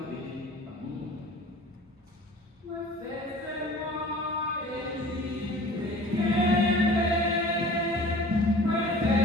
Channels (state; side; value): normal; both; correlation 0.45